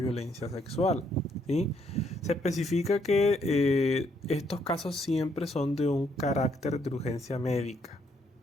sexual, ¿sí? Se especifica que estos casos siempre son de un carácter de urgencia médica,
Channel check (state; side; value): normal; both; correlation 0.72